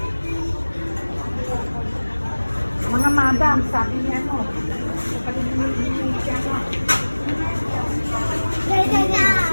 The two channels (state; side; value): inverted; both; correlation -1.00